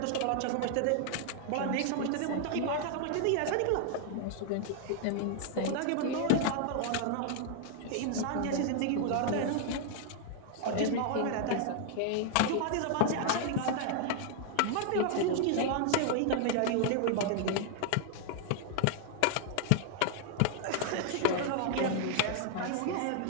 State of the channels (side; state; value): both; different; correlation 0.00